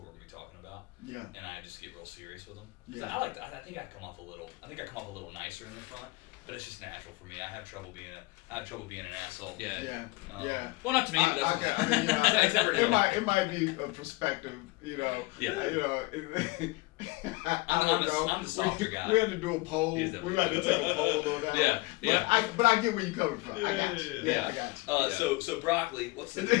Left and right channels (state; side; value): quieter; right; 23.2 dB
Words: we're gonna be talking about. Yeah. And I just get real serious with them. Yeah. I think I come off a little nicer in the front, but it's just natural for me. I have trouble being an asshole. Yeah. Yeah. Well, not to me, but that's it might be a perspective, Yeah. I'm the softer guy. We had to do a poll. We had to take a poll on that. Yeah. But I get where you're coming from. I got you. Yeah. I got you. So broccoli. What's